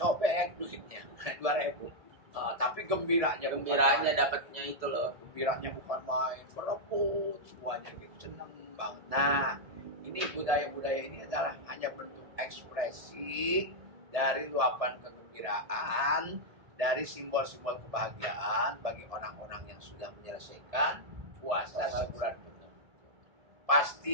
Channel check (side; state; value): left; late; 1.7 ms